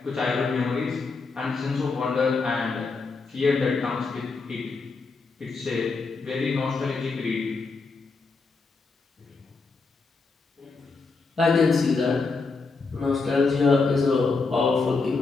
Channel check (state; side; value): quieter; right; 4.2 dB